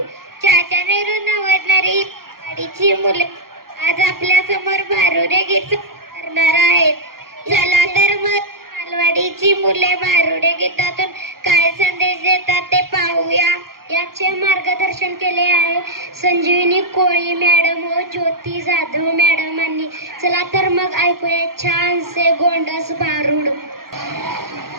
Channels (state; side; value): late; left; 0.92 ms